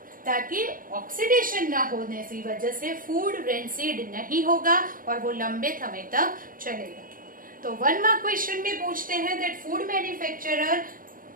ताकि ऑक्सीडेशन ना होने की वजह से फूड रेंसिड नहीं होगा और वो लंबे समय तक चलेगा। तो 1 मार्क क्वेश्चन में पूछते हैं that food manufacturer,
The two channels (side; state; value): left; late; 0.40 ms